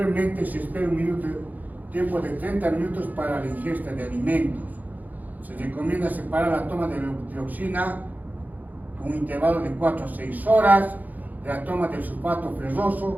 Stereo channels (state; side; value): late; left; 0.081 ms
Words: se espera tiempo de 30 minutos para la ingesta de alimentos. Se recomienda separar la toma de levotiroxina con un intervalo de 4 a 6 horas de la toma del sulfato